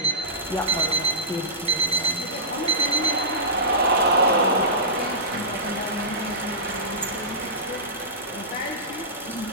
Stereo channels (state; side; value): normal; both; correlation -0.20